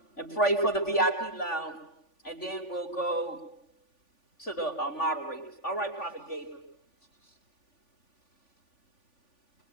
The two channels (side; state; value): right; late; 3.5 ms